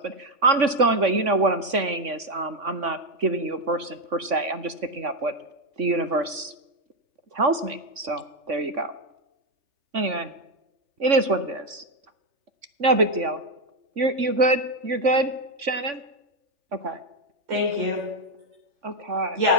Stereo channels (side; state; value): left; late; 3.5 ms